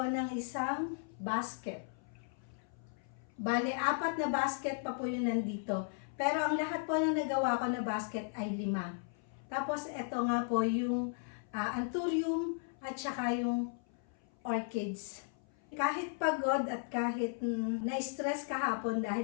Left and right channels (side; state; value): right; silent; 54 dB below the other